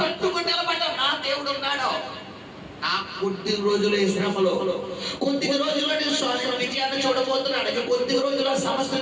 నిలబడ్డావు. నా దేవుడు ఉన్నాడు. నా కొద్ది రోజులు ఈ శ్రమలో, కొద్ది రోజుల్లో నేను విజయాన్ని చూడబోతున్నాడు, కొద్ది రోజుల్లో సమస్య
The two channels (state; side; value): identical; both; correlation 1.00